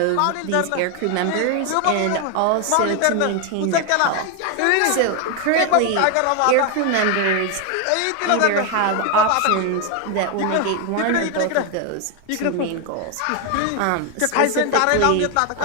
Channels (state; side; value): different; both; correlation 0.01